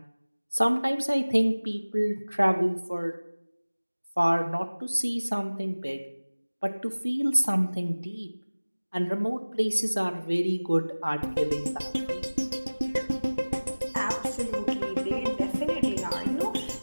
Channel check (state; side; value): inverted; both; correlation -1.00